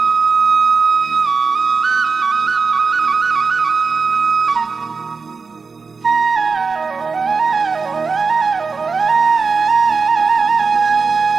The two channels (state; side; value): quieter; left; 4.7 dB